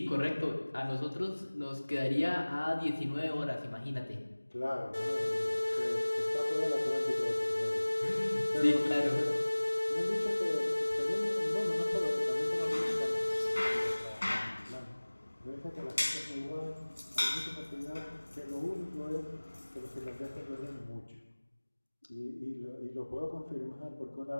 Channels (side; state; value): both; inverted; correlation -1.00